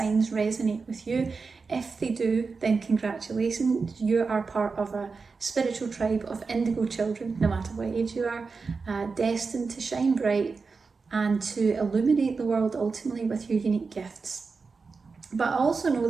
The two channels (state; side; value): quieter; left; 4.6 dB